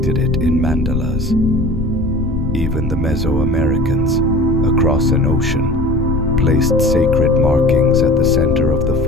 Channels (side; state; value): left; noise; rumble, 6 dB below the sound